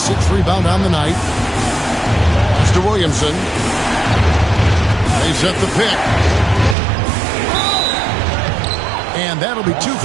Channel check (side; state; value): left; drops out; at 6.8 s